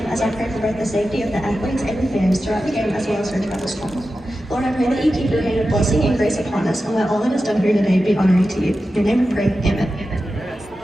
as I pray for both the safety of the athletes and the fans throughout the game as well as our travel school. Lord, I pray that you keep your hand of blessing and grace upon us and let all that is done here today be honoring to you. In your name we pray, amen.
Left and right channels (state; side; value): normal; both; correlation 0.92